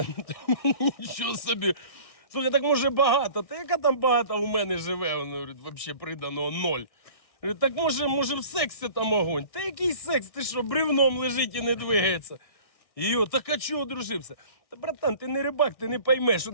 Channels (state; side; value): late; right; 1.7 ms